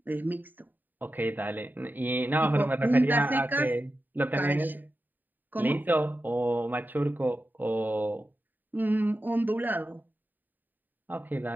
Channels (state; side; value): late; left; 0.090 ms